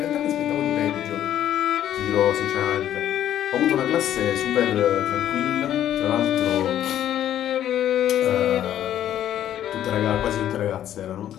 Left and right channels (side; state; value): right; quieter; 11.3 dB